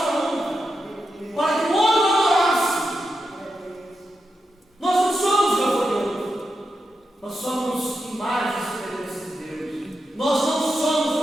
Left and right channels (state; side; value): normal; both; correlation 0.87